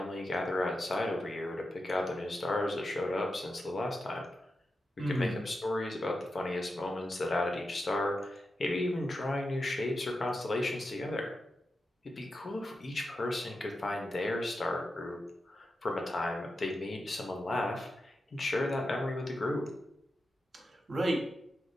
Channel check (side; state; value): both; normal; correlation 0.89